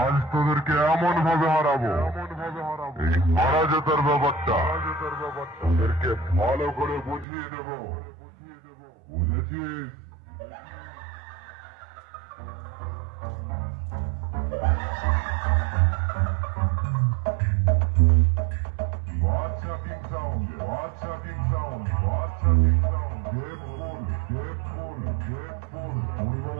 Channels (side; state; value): left; drops out; at 7.2 s